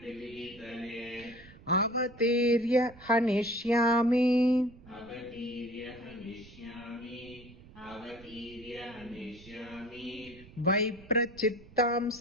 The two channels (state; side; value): noise; right; rumble, 21 dB below the sound